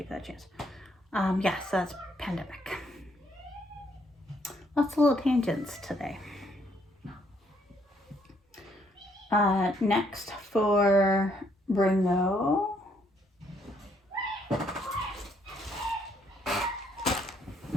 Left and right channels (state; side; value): normal; both; correlation 0.69